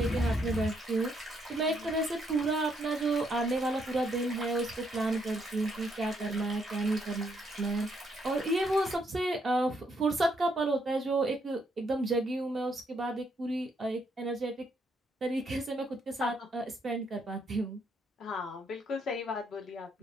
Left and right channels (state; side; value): normal; both; correlation 0.74